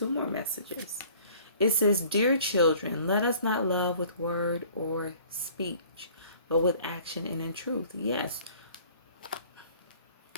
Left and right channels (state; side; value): inverted; both; correlation -0.52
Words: more messages. It says, "Dear children, let us not love with word or speech, but with action and in truth." Yes.